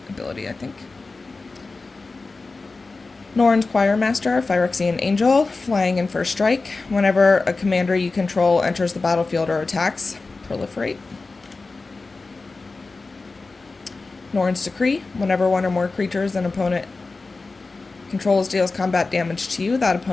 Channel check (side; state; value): right; quieter; 3.7 dB